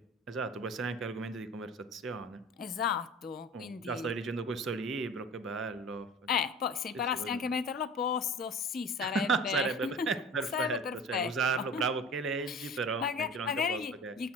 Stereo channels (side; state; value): both; normal; correlation 0.39